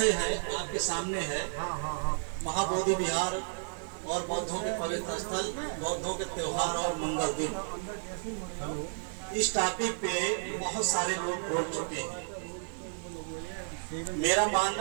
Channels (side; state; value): left; silent; digital silence